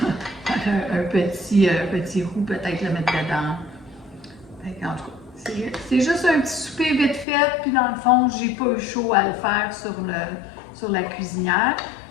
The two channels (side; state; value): right; drops out; at 7.2 s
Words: un petit roux, peut-être le mettre dedans. Fait que, en tout cas, c'est juste un petit souper vite fait. Puis dans le fond, j'ai pas eu chaud à le faire sur la cuisinière.